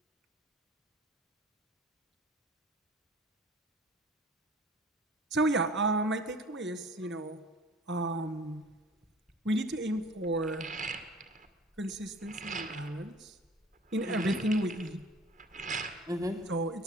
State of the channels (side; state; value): both; normal; correlation 0.46